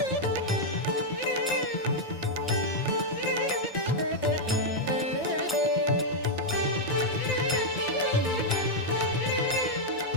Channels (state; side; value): normal; both; correlation -0.01